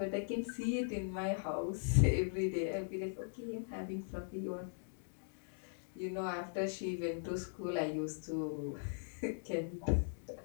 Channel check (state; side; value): silent; right; digital silence